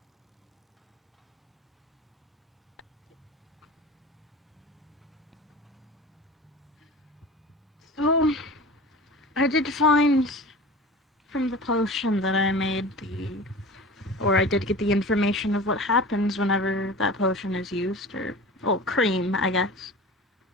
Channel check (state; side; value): normal; both; correlation 0.35